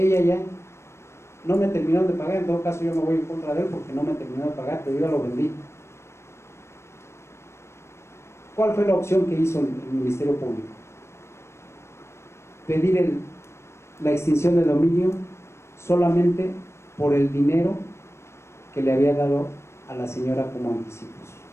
ya no me terminaron de pagar, en todo caso yo me voy en contra de él porque no me terminó de pagar, pero yo ya lo vendí. ¿Cuál fue la opción que hizo el Ministerio Público? Pedir la extinción de dominio solamente por el dinero que le había dado a la señora como anticipos.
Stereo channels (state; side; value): late; right; 0.13 ms